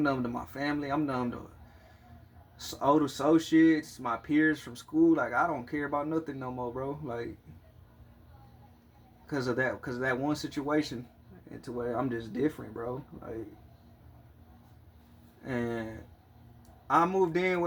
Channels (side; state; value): both; identical; correlation 1.00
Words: numb to my family. I'm numb to old associates, my peers from school. Like, I don't care about nothing no more, bro. Like, because of that one situation, and to where I'm just different, bro. Like, and I moved in